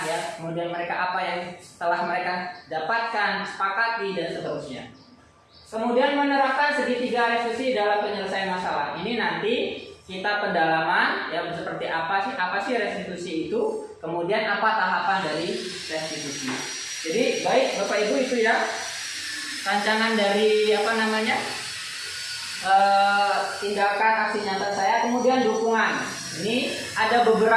ya, kemudian mereka apa yang telah mereka dapatkan, sepakati, dan seterusnya. Kemudian menerapkan segitiga restitusi dalam penyelesaian masalah. Ini nanti kita pendalaman, ya, seperti apa sih restitusi itu, kemudian apa tahapan dari restitusi. Jadi baik Bapak Ibu, itu ya rancangan dari tindakan aksi nyata saya. Kemudian dukungan. Ini ada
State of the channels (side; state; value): both; identical; correlation 1.00